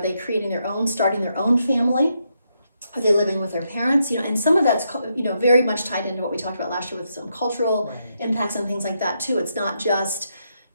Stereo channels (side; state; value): both; inverted; correlation -0.80